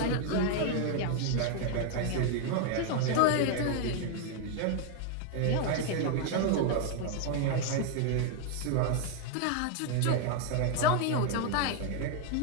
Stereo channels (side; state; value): both; different; correlation 0.00